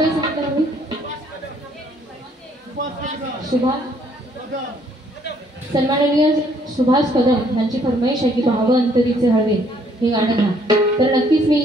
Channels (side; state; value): both; normal; correlation 0.65